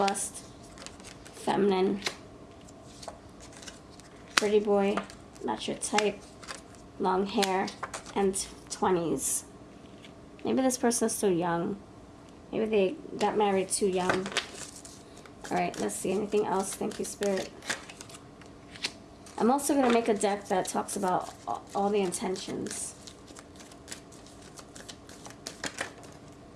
feminine, pretty boy, not your type, long hair, and 20s. Maybe this person is still young. Maybe they got married too young. Alright, let's see. Anything else? Thank you, Spirit. I'm also going to make a deck that talks about all the intentions.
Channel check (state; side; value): identical; both; correlation 1.00